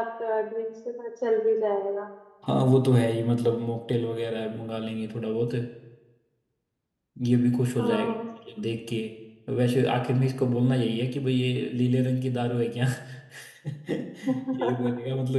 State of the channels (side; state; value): both; identical; correlation 1.00